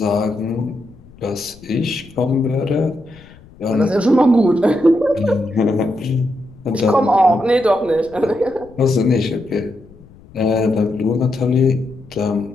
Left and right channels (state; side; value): noise; left; rumble, 23 dB below the sound